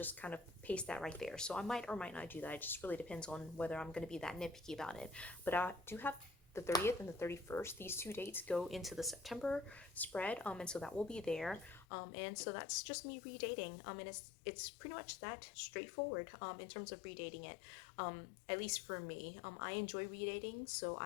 kind of paste that right there. So I might or might not do that. It just really depends on whether I'm going to be that nitpicky about it. But I do have the 30th and the 31st. These two dates go into the September spread, and so that will be there. And so that's just me redating. And it's pretty much that straightforward in terms of redating it. At least for me, I enjoy redating, so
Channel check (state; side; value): drops out; right; at 11.9 s